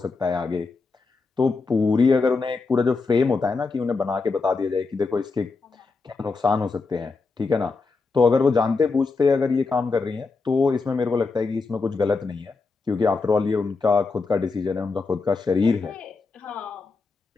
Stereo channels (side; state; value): right; quieter; 4.2 dB